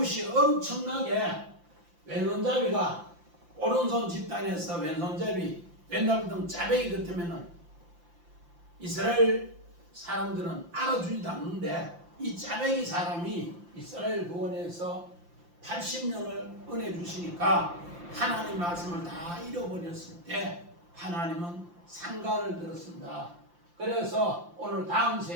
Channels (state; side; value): late; left; 5.8 ms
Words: 엄청나게 왼손잡이가 오른손 집단에서 왼손잡이 맨날 등 짜배기 같으면은 이스라엘 사람들은 알아주지도 않는데 이 짜배기 사람이 이스라엘 구원에서 80년을 은혜 주시니까 하나님 말씀을 다 잃어버렸을 때 하나님은 상가를 들었습니다. 그래서 오늘 다음